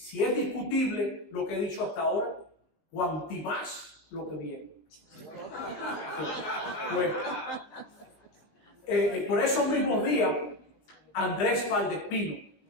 es discutible lo que he dicho hasta ahora, cuanti más lo que viene. Pues, por esos mismos días, Andrés Valdespino,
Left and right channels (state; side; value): late; right; 19 ms